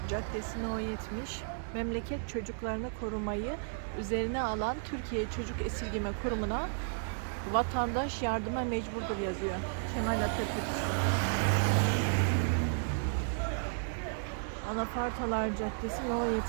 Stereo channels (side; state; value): left; silent; digital silence